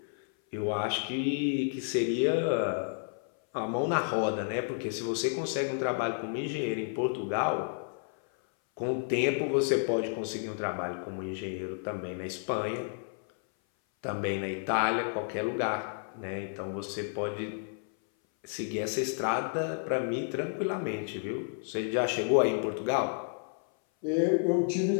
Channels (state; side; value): silent; right; 57 dB below the other